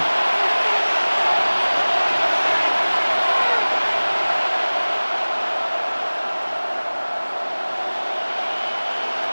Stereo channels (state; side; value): inverted; both; correlation -1.00